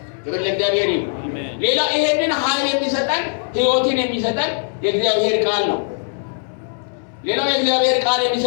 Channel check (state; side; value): silent; right; digital silence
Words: ክብር ለእግዚአብሔር ይሁን። ሌላ ይሄንን ኃይል የሚሰጠን ህይወትን የሚሰጠን የእግዚአብሔር ቃል ነው። ሌላው የእግዚአብሔር ቃል